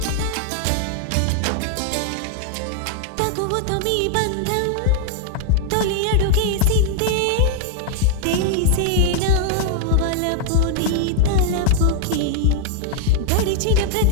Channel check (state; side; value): different; both; correlation 0.00